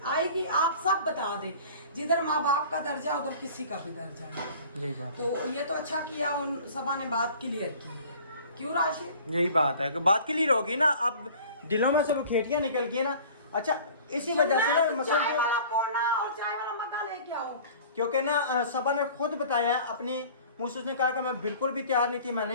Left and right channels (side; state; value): both; inverted; correlation -0.45